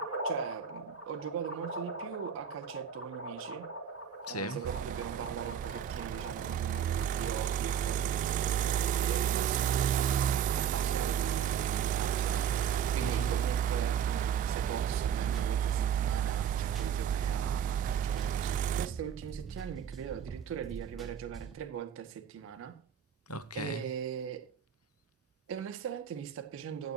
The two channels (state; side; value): quieter; left; 8.6 dB